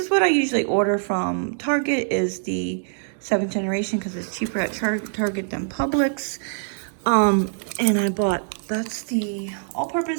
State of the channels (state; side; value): silent; left; digital silence